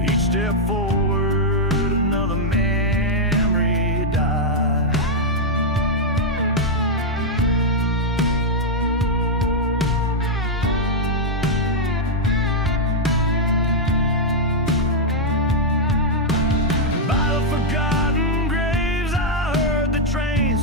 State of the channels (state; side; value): normal; both; correlation -0.03